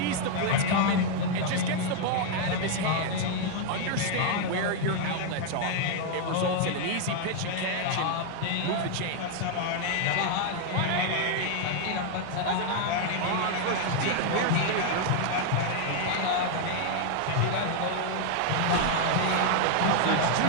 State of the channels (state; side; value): different; both; correlation 0.00